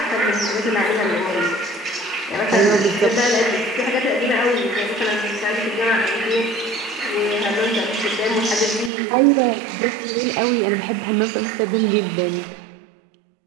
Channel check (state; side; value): drops out; left; at 8.9 s